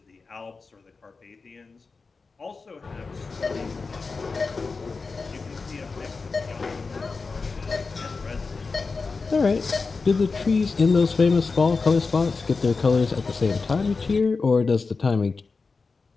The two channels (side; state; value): right; quieter; 4.3 dB